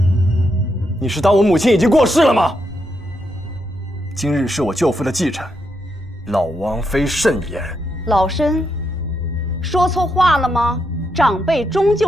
你是当我母亲已经过世了吗？今日是我舅父的忌辰，老王妃慎言。老身说错话了吗？长辈终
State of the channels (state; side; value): noise; left; rumble, 22 dB below the sound